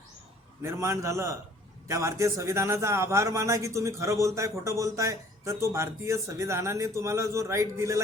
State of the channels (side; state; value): both; normal; correlation 0.54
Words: निर्माण झालं. त्या भारतीय संविधानाचा आभार माना की तुम्ही खरं बोलताय, खोटं बोलताय, तर तो भारतीय संविधानाने तुम्हाला जो राईट दिलेला